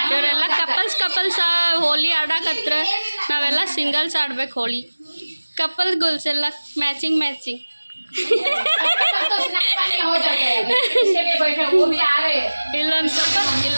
ಇವರೆಲ್ಲ ಕಪಲ್ಸ್ ಹೋಲಿ ಆಡಕತ್ರ. ನಾವೆಲ್ಲ ಸಿಂಗಲ್ಸ್ ಆಡ್ಬೇಕು ಹೋಳಿ. ಕಪಲ್ ಗೋಲ್ಸ್ ಎಲ್ಲ ಮ್ಯಾಚಿಂಗ್ ಇಲ್ಲೊಂದು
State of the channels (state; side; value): inverted; both; correlation -1.00